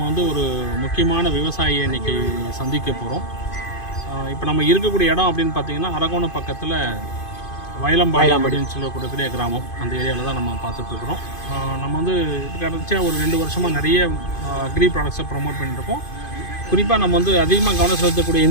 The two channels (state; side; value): late; right; 2.5 ms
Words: வந்து ஒரு முக்கியமான விவசாயியை இன்றைக்கி சந்திக்க போகிறோம். இப்போ நம்ம இருக்கக்கூடிய இடம் அப்படின்னு பார்த்தீங்கன்னா அரகோணம் பக்கத்தில் வயலம்பாளையம் அப்படின்னு சொல்லக்கூடிய கிராமம். அந்த ஏரியாவில் தான் நம்ம பார்த்துட்ருக்குறோம். நம்ம வந்து கடைசியாக ஒரு 2 வருஷமாக நிறைய அக்ரி ப்ராடக்ட்ஸை ப்ரொமோட் பண்ணிட்டுருக்கோம். குறிப்பாக நம்ம வந்து அதிகமாக கவனம் செலுத்தக்கூடிய